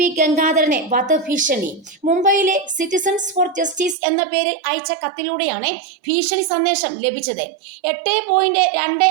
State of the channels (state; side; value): drops out; left; at 4.0 s